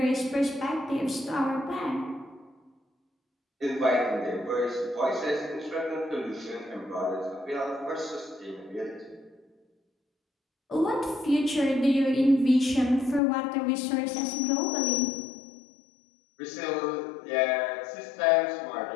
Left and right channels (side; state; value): right; drops out; at 13.2 s